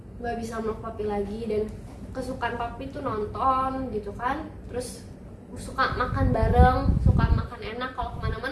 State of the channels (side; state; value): both; identical; correlation 1.00